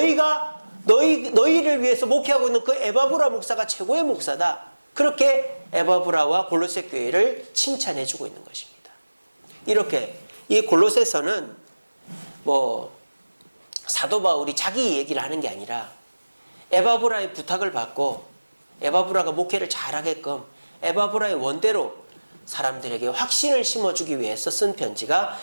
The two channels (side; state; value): both; inverted; correlation -1.00